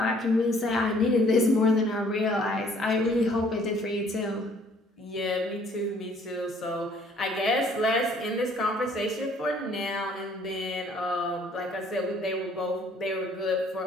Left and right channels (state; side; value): normal; both; correlation 0.60